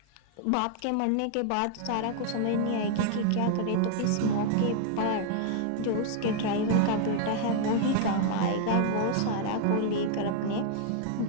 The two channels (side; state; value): both; different; correlation 0.00